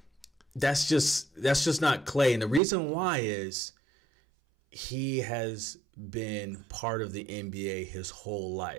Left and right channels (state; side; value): drops out; left; at 2.6 s